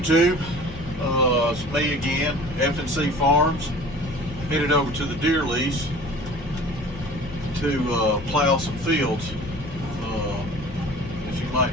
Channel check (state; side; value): normal; both; correlation 0.44